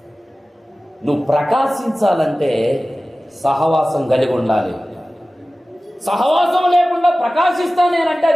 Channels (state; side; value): normal; both; correlation 0.97